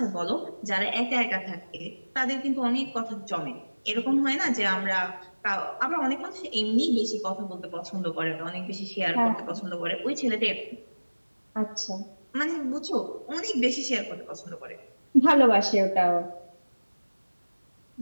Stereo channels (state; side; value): inverted; both; correlation -1.00